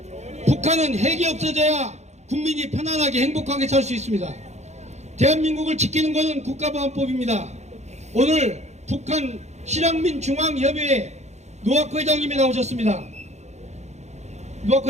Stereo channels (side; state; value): left; late; 0.33 ms